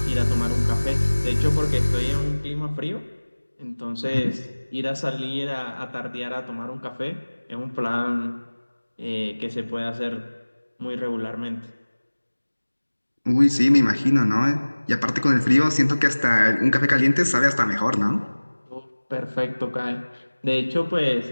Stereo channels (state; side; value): inverted; both; correlation -1.00